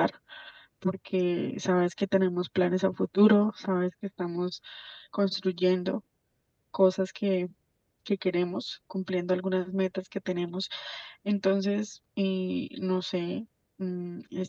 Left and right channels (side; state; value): both; identical; correlation 1.00